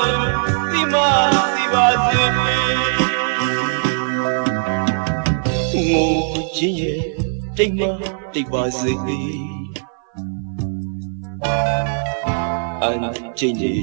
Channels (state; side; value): silent; left; 60 dB below the other